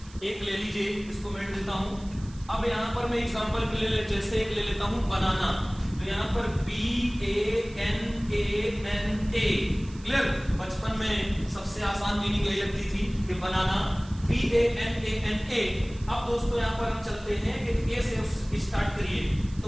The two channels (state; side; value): noise; right; hiss, 23 dB below the sound